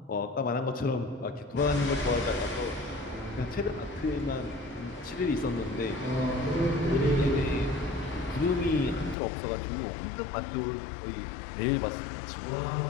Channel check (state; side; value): drops out; right; at 9.2 s